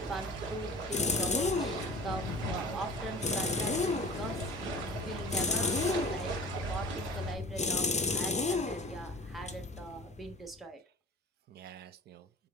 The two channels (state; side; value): normal; both; correlation 0.42